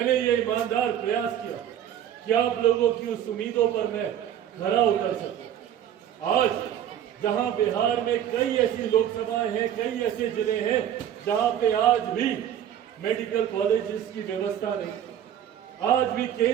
ये ईमानदार प्रयास किया कि आप लोगों की उस उम्मीदों पर मैं खरा उतर सकूं। आज जहां बिहार में कई ऐसी लोकसभाएं हैं, कई ऐसे जिले हैं जहां पे आज भी मेडिकल कॉलेजेस की व्यवस्था नहीं, आज भी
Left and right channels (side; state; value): left; quieter; 10.3 dB